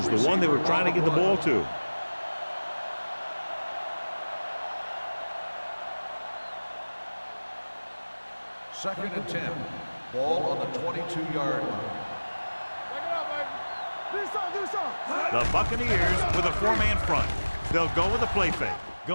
the one they were trying to get the ball to. Second and 10. Ball on the 22-yard line. Check it out, baby. Do something. The Buccaneers with a 4-man front. They'll go with a play fake.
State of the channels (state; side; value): inverted; both; correlation -1.00